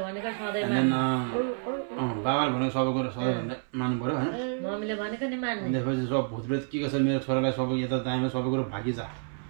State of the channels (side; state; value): left; silent; 59 dB below the other